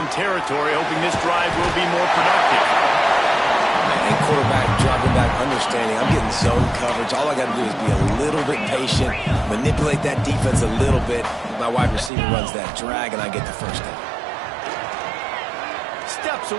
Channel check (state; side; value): drops out; left; at 12.1 s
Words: territory, hoping this drive will be more productive. And quarterback dropping back, understanding I'm getting zone coverage. All I got to do is be a little bit patient, manipulate that defense a little bit. My wide receiver runs that drag, and I get the first down. Steps